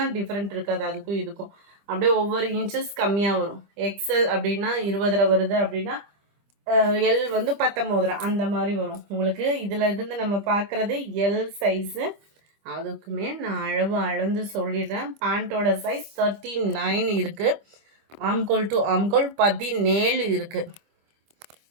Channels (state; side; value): late; left; 25 ms